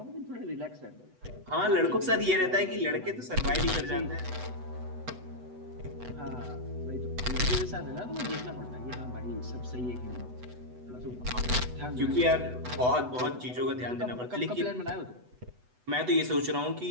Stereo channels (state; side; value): late; left; 8.1 ms